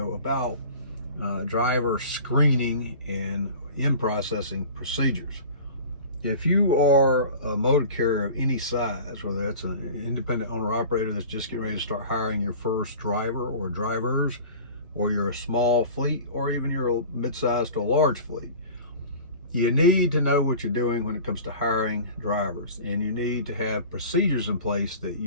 about driver screening and in-processing procedures. If you are a motor carrier of any size, whether that's an independent owner-operator that's just getting ready to start hiring your first driver or drivers, or you're a small fleet, or even you're a mid-sized to a large fleet, you need to know what you're doing when it comes to hiring drivers, and you need to have procedures in place that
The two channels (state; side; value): inverted; both; correlation -0.39